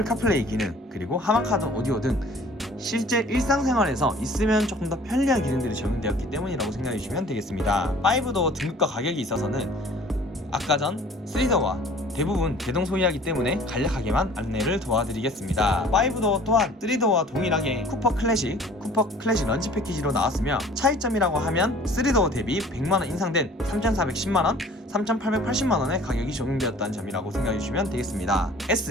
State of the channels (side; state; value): both; normal; correlation 0.50